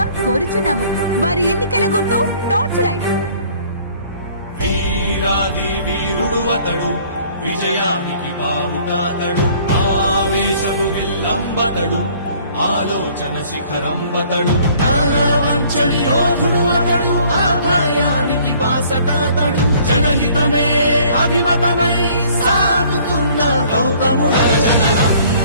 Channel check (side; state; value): both; inverted; correlation -0.56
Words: కోరుచున్నాము. వారి ఎన్నికల గుర్తు టార్చ్ లైట్. వీరాది వీరుడు అతడు, విజయానికి బావుటాతడు, ఆవేశపు విల్లంబతడు, ఆలోచన శిఖరంబతడు, వంచని యోధుడు అతడు, అభయానికి బాసటాతడు, జనహితమే అభిమతమై సాగుతున్న గౌతముడు. జననం